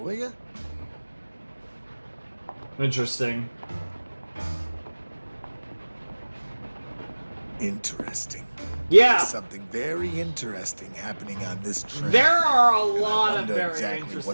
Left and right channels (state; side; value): inverted; both; correlation -1.00